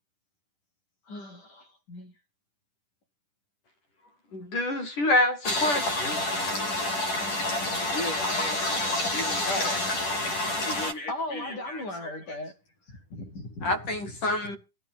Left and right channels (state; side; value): late; right; 10 ms